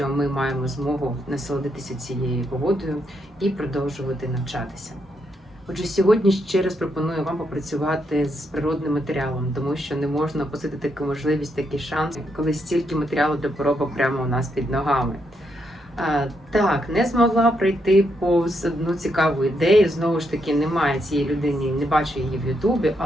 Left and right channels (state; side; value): normal; both; correlation 0.79